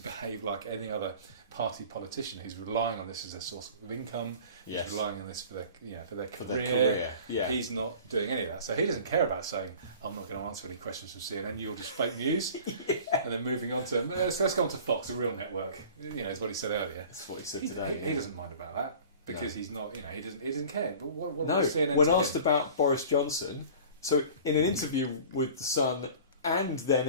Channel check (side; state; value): both; inverted; correlation -0.43